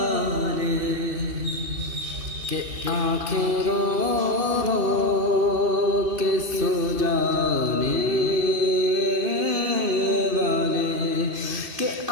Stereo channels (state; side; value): late; left; 2.7 ms